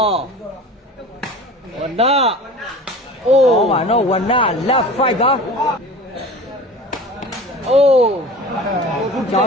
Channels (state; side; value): normal; both; correlation 0.38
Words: ဝနာအိုးပါနော်ဝနာလက်5ပါအိုးကြောင်